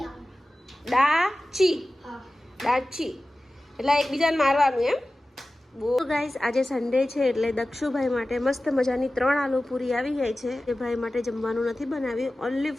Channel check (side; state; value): both; normal; correlation 0.96